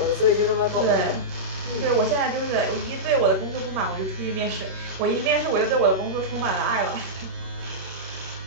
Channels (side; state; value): left; late; 27 ms